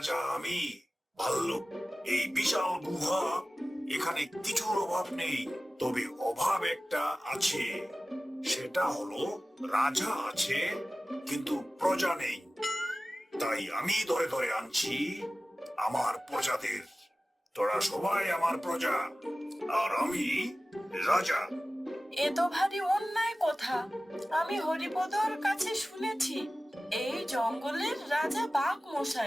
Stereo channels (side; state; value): both; normal; correlation 0.96